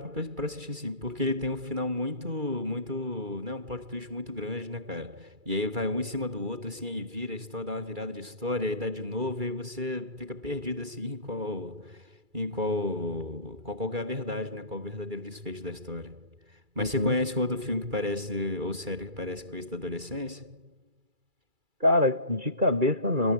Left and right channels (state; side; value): late; left; 2.3 ms